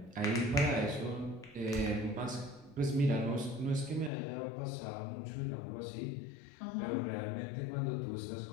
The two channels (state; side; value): drops out; right; at 4.1 s